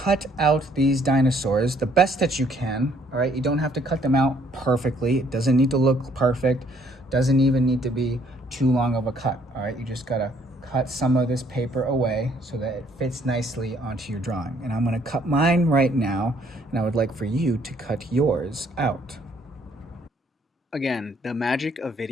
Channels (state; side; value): normal; both; correlation 0.64